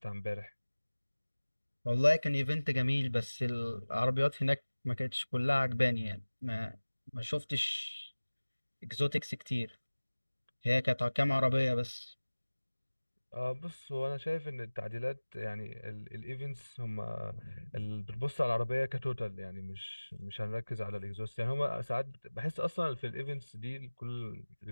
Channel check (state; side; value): inverted; both; correlation -1.00